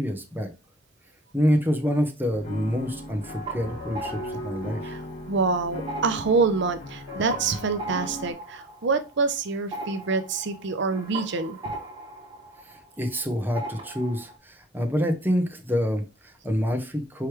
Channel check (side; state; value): both; normal; correlation 0.43